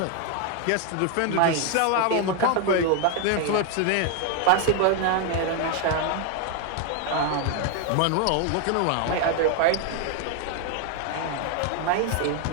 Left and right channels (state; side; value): different; both; correlation 0.01